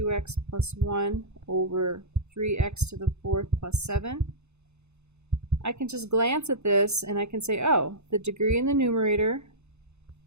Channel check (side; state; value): left; late; 0.81 ms